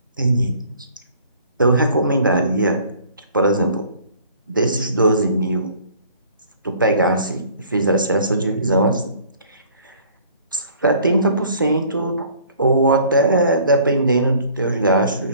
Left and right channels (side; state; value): both; inverted; correlation -0.54